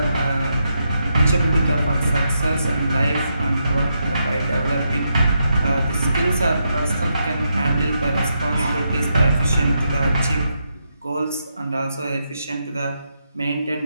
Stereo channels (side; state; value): both; inverted; correlation -0.82